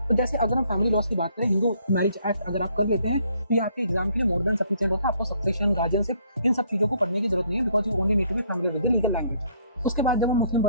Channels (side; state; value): both; inverted; correlation -0.65